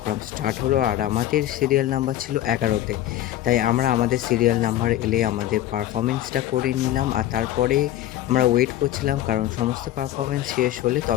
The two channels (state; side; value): quieter; right; 13.2 dB